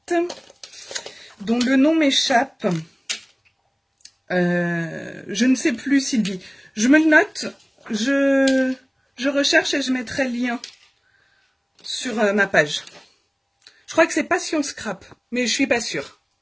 dont le nom m'échappe. Je ne sais plus, Sylvie. Je me le note, je recherche et je mettrai le lien sur ma page. Je crois que c'est Passion Scrap, mais je suis pas sûre.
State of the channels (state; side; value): identical; both; correlation 1.00